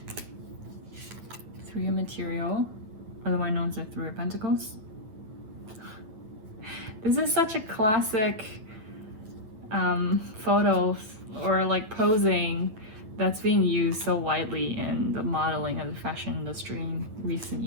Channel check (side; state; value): left; late; 8.9 ms